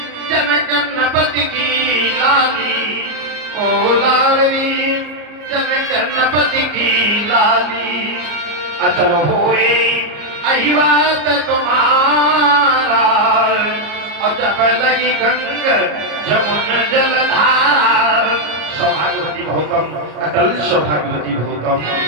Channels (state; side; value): late; left; 34 ms